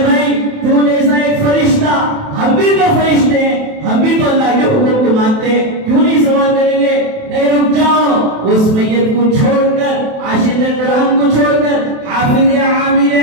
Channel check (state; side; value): late; left; 28 ms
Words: بھائی تو جیسا ایک فرشتہ، ہم بھی تو فرشتے ہیں، ہم بھی تو اللہ کے حکم کو مانتے ہیں، کیوں نہیں سوال کریں گے؟ نہیں، رک جاؤ، اس میت کو چھوڑ کر، عاشق قرآن کو چھوڑ کر، حافظ